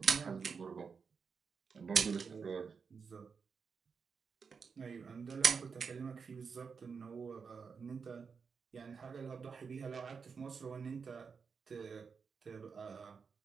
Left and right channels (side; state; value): left; quieter; 5.6 dB